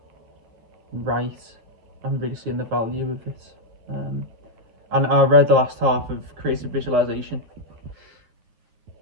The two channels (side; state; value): left; late; 9.1 ms